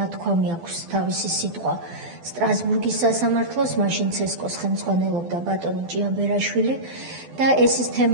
აქვს თავისი სიტყვა სტრასბურგის სასამართლოს, მაშინ ცესკოს ხელმძღვანელობდა ბატონი ჭიაბერაშვილი და ეს ის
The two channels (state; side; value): late; left; 12 ms